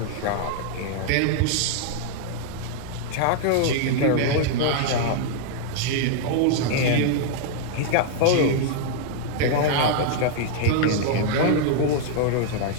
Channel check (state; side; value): different; both; correlation -0.01